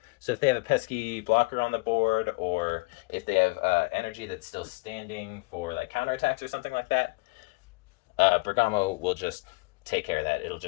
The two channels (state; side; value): quieter; right; 26.4 dB